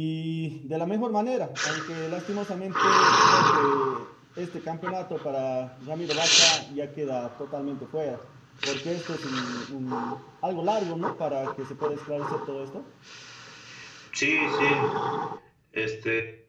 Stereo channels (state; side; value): identical; both; correlation 1.00